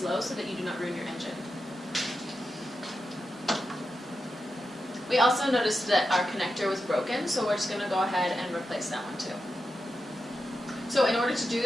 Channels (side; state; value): both; normal; correlation 0.89